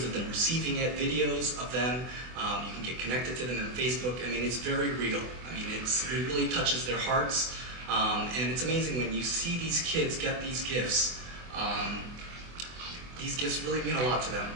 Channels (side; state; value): left; late; 24 ms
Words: of them receiving it, videos of them. You can get connected to them on Facebook. I mean, it's very real. I mean, it really touches their hearts. And it's amazing when you see these kids get these gifts. These gifts really mean a lot to them.